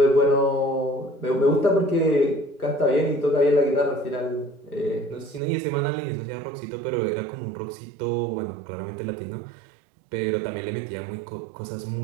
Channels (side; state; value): left; drops out; at 5.4 s